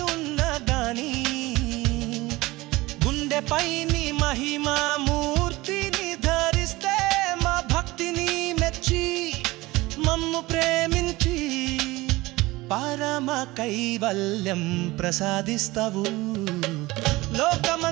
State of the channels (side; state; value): left; quieter; 20.2 dB